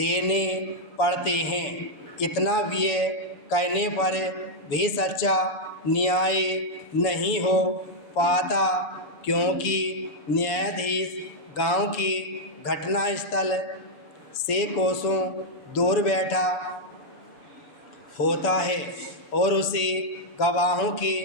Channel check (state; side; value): late; right; 6.8 ms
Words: पड़ते हैं। इतना व्यय करने पर भी सच्चा न्याय नहीं हो पाता, क्योंकि न्यायाधीश गांव की घटनास्थल से कोसों दूर बैठा होता है और उसे गवाहों के